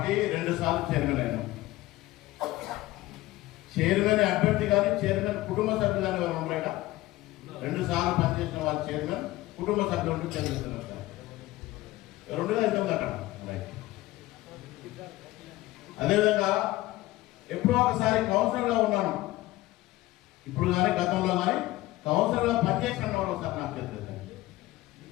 2 సార్లు chairman అయినా. Chairman అభ్యర్థి కానీ చైర్మన్ కుటుంబ సభ్యులు కానీ వారు ఉన్నారా? 2 సార్లు పనిచేసిన వారు చైర్మన్ కుటుంబ సభ్యులు ఉంటూ చైర్మన్ 2గా అవుతుంది అక్కడ. అదేవిధంగా ఎప్పుడో ఒకసారి కౌన్సిలర్గా ఉన్నాను. ఇప్పుడు కానీ గతంలో కానీ కౌన్సిలర్గా పనిచేసిన వాడు ఒకసారి నాకు తెలియదు.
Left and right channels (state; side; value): quieter; right; 17.7 dB